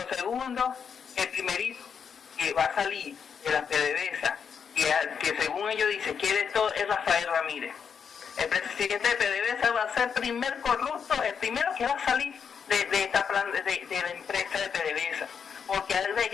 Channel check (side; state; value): right; quieter; 6.8 dB